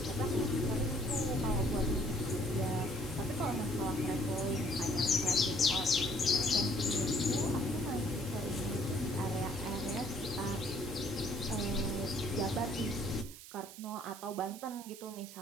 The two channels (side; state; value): right; noise; hiss, 15 dB below the sound